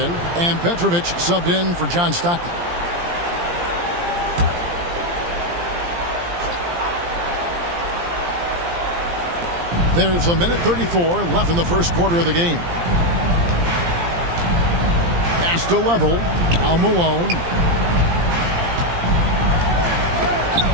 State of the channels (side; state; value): left; late; 17 ms